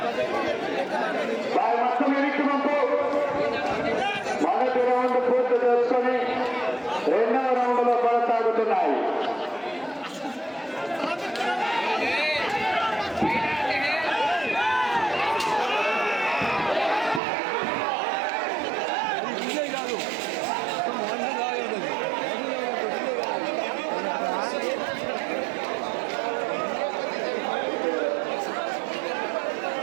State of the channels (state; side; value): drops out; left; at 17.2 s